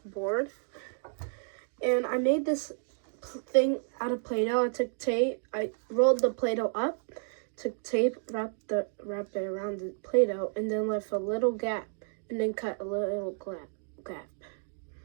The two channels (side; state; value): left; silent; 57 dB below the other